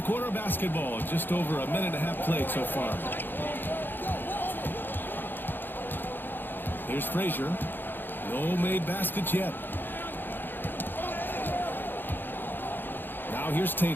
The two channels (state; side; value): late; right; 0.095 ms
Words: quarter of basketball, just over a minute and a half played so far. Here's Frazier. No made baskets yet. Now here's